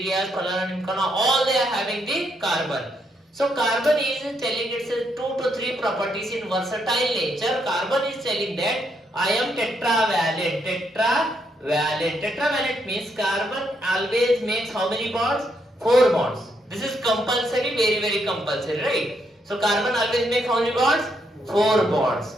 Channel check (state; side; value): normal; both; correlation 0.76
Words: all they are having the carbon. So carbon is telling its 2 to 3 properties in versatile nature. Carbon is telling that I am tetravalent. Tetravalent means carbon always makes how many bonds? 4 bonds. This is compulsory, very, very compulsory, right? So carbon always makes how many bonds? 4 bonds.